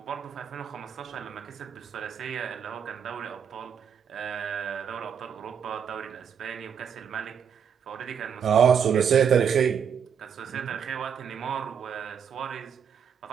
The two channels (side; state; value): left; quieter; 7.5 dB